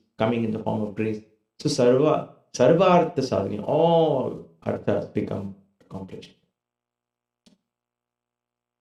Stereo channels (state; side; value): identical; both; correlation 1.00